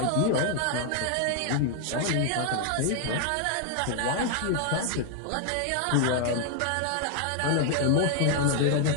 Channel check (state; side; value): different; both; correlation 0.00